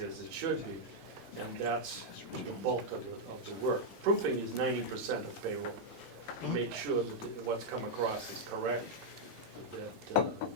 it should be, and that's the bulk of the work. Proofing is 90% of payroll, to make sure that what's come across is correct,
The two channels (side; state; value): both; normal; correlation -0.03